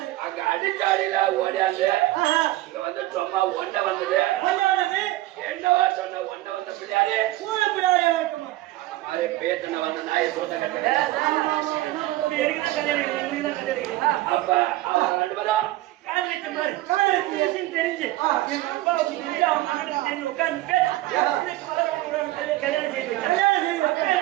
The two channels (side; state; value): left; quieter; 16.9 dB